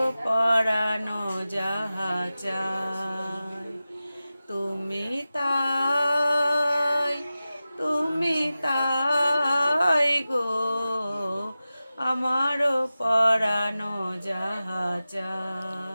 পরানো যাহা চায় তুমি তাই, তুমি তাই গো। আমারও পরানো যাহা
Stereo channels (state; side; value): inverted; both; correlation -0.95